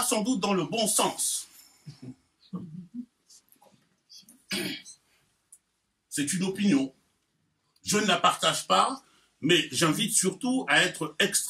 sans doute dans le bon sens. C'est une opinion. Je ne la partage pas, mais j'invite surtout à être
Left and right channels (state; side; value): identical; both; correlation 1.00